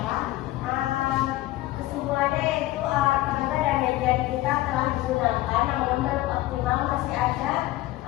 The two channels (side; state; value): right; quieter; 16.9 dB